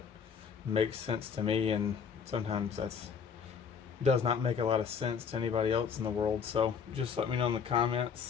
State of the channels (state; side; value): quieter; right; 6.5 dB